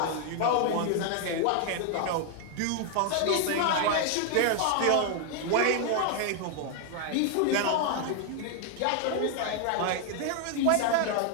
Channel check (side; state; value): both; different; correlation 0.00